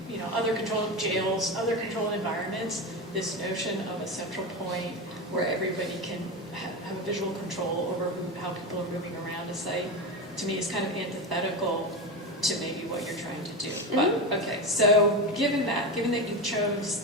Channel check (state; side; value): normal; both; correlation 0.19